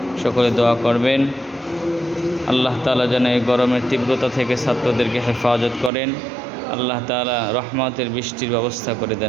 সকলে দোয়া করবেন। আল্লাহ তাআলা যেন এই গরমের তীব্রতা থেকে ছাত্রদেরকে হেফাজত করেন। আল্লাহ তাআলা রহমতের বৃষ্টির ব্যবস্থা করে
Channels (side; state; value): left; drops out; at 5.9 s